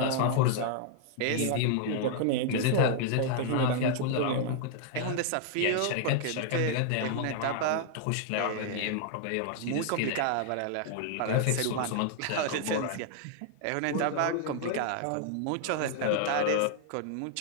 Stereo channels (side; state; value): both; different; correlation -0.01